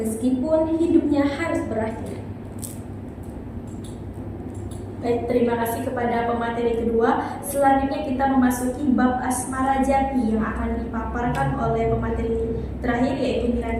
hidupnya harus berakhir. Baik, terima kasih kepada pemateri kedua. Selanjutnya kita memasuki bab asmara jati yang akan dipaparkan oleh pemateri terakhir, yaitu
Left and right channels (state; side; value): identical; both; correlation 1.00